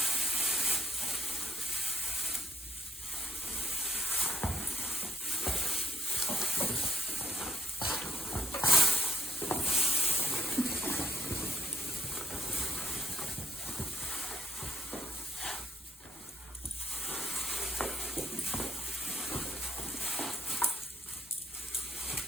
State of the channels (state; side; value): normal; both; correlation 0.69